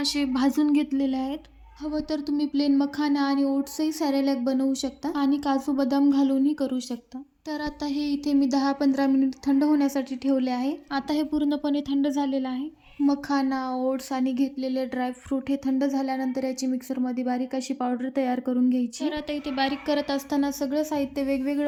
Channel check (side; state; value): both; identical; correlation 1.00